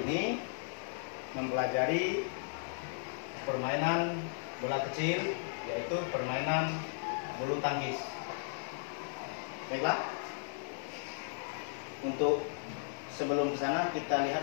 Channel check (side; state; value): right; silent; digital silence